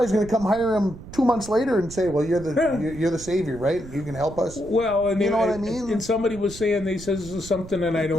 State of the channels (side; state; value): right; noise; rumble, 15 dB below the sound